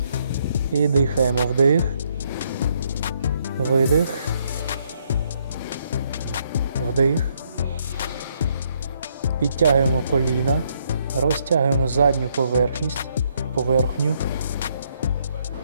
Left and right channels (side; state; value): both; inverted; correlation -0.72